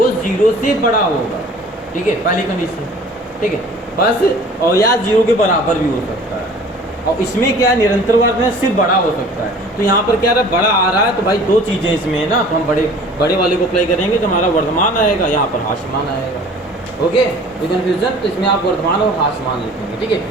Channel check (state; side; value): normal; both; correlation 0.47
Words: 0 से बड़ा होगा, ठीक है, पहली कंडीशन, ठीक है, बस, और या 0 के बराबर भी हो सकता है, और इसमें क्या है, निरंतर वर्ग में सिर्फ बड़ा हो सकता है, तो यहाँ पर क्या रहा, बड़ा आ रहा है, तो भाई 2 चीज़ें इसमें है ना, तो हम बड़े वाले को अप्लाई करेंगे तो हमारा वर्धमान आएगा, यहाँ पर हास्यमान आएगा, ओके, ये कन्फ्यूजन, तो इसमें आप वर्धमान और हास्यमान लिखेंगे, ठीक है,